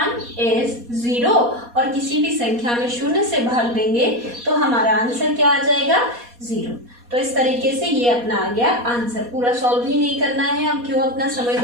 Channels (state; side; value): late; left; 4.2 ms